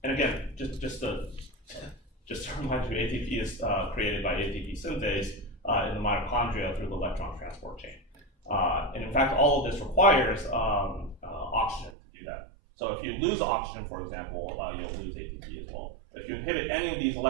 again, just to remind you, ATP is created by ATP synthase in the mitochondria through the electron transport chain. And in fact, all of this requires oxygen to do that. So if you lose oxygen, for example, you'll lose ATP as well. If you inhibit any of these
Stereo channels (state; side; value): drops out; left; at 12.0 s